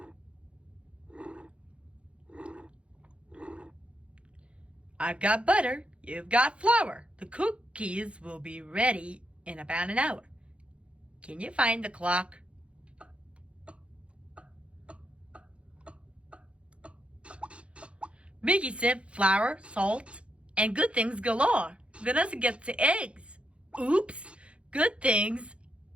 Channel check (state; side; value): late; left; 0.060 ms